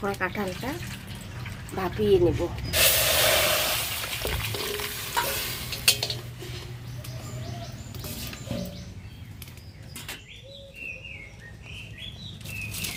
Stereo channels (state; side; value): identical; both; correlation 1.00